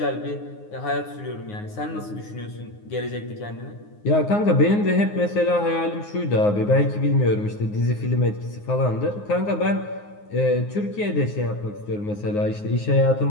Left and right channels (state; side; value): late; right; 9.6 ms